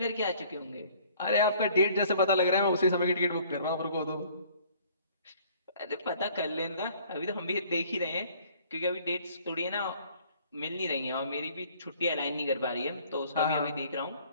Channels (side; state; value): both; inverted; correlation -0.56